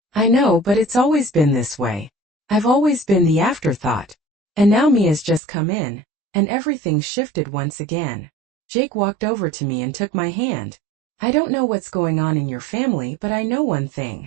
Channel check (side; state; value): left; drops out; at 5.4 s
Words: "I know, but it's always been this way. I've always been the afterthought. And now Mia's just come in, and everything shifted once again." Jake walked over to me and took my hand. "I don't know what's going on in your family, but I know one